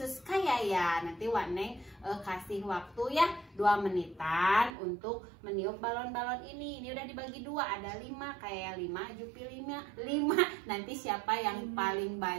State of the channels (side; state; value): left; drops out; at 4.7 s